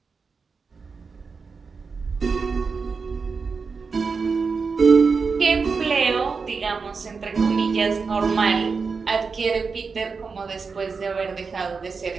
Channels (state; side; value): quieter; left; 5.0 dB